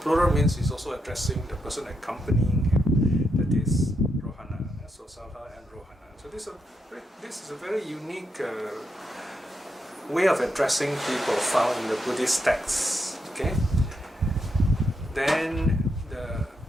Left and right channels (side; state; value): both; normal; correlation 0.81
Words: means he's also addressing the person accompanying him, that is Rohaṇa. So Sāḷha and Rohaṇa. So this is a very unique way of addressing people found in the Buddhist texts. Okay. Then the